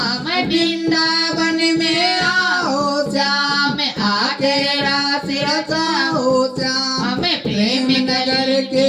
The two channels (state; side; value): identical; both; correlation 1.00